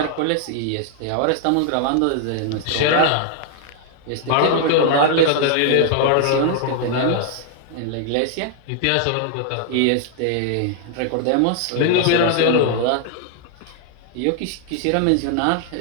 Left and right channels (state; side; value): different; both; correlation 0.00